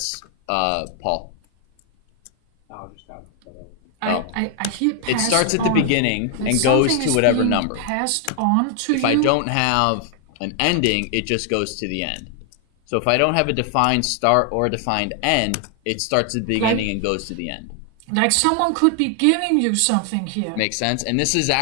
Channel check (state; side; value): different; both; correlation 0.00